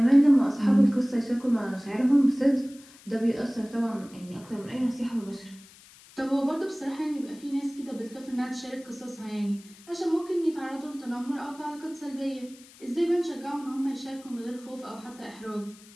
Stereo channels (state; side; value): noise; left; hiss, 23 dB below the sound